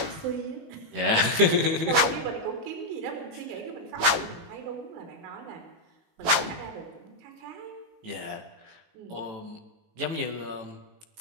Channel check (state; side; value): late; left; 18 ms